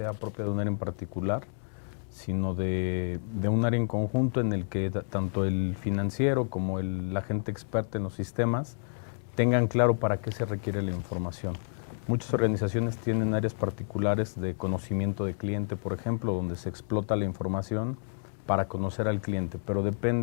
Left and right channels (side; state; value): right; silent; digital silence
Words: propio de un área en particular, sino de un área en conjunto en el que tanto el financiero como la gente experta en los sistemas tengan claro para qué se requiere la información. Muchas organizaciones tienen áreas particulares de conocimiento de cliente, por ejemplo, donde se explota la información para conocer al cliente, pero